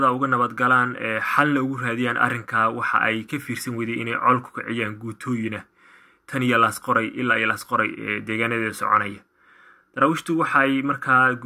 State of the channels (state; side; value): identical; both; correlation 1.00